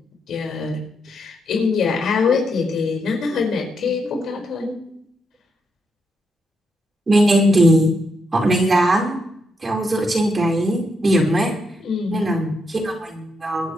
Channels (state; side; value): normal; both; correlation 0.80